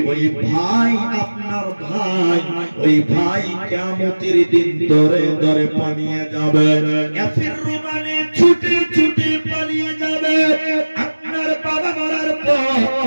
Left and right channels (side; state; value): both; inverted; correlation -1.00